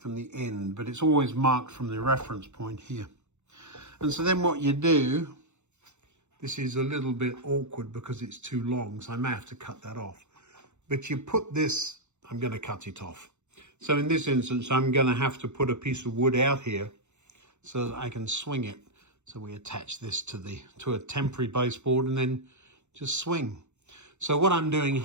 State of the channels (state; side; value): late; left; 0.83 ms